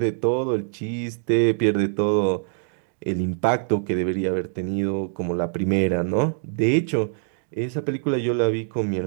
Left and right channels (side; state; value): left; silent; digital silence